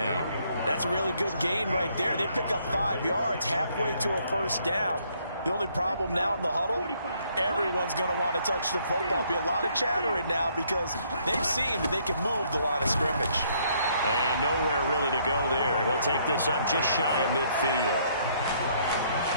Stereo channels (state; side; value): inverted; both; correlation -0.67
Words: That's a really good gain right there. They pick up 5 yards halfway to a first down. The only problem now in the huddle, everyone's going to want to touch the football. Be a lot of chattering now because they've seen that they can move the line of scrimmage. And nowhere really to go there. He'll take this up just shy of midfield.